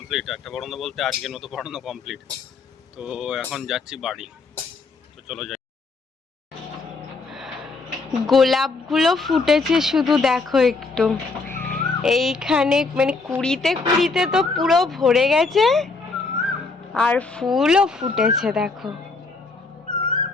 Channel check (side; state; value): right; quieter; 4.0 dB